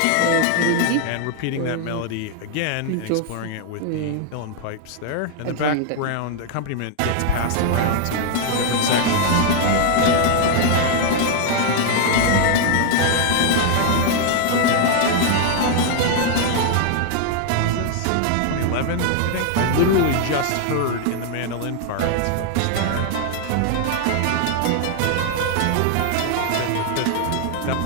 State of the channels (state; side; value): different; both; correlation 0.00